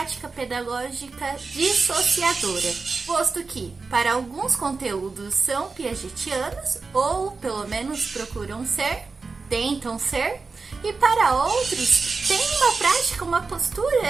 pedagógica dissociadora, posto que, para alguns conteúdos são piagetianos, ou pelo menos procuram ser, tentam ser, e para outros tem uma prática, uma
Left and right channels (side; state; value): left; quieter; 4.3 dB